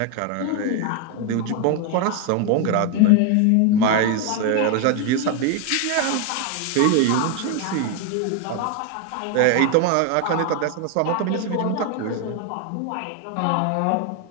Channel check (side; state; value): both; different; correlation 0.01